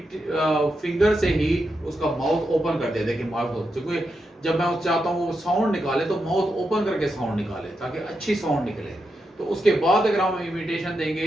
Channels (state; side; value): normal; both; correlation 0.85